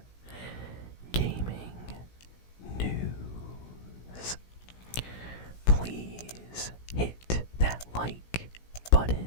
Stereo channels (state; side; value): late; right; 17 ms